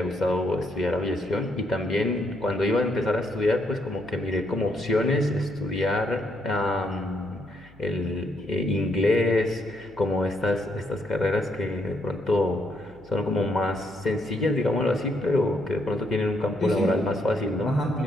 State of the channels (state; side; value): noise; left; hum, 26 dB below the sound